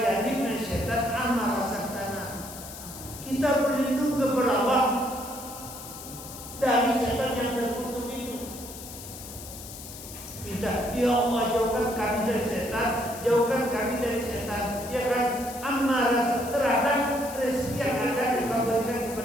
jannibna syaitan amma razaqtana. Kita berlindung kepada Allah dari setan yang terkutuk itu. Minta, ya Allah jauhkan kami dari setan, jauhkan kami dari setan. Ya kan, amma terhadap rezeki yang akan Engkau berikan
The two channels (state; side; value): noise; left; hiss, 13 dB below the sound